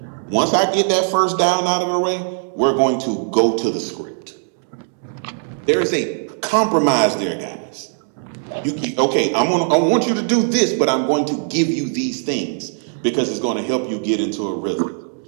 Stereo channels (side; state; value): left; silent; digital silence